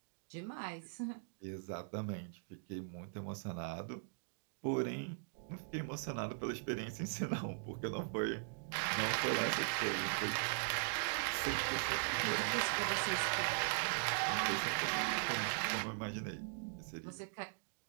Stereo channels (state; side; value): silent; left; digital silence